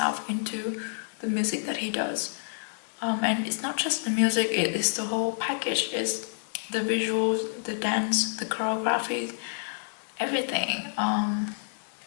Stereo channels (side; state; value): right; silent; 59 dB below the other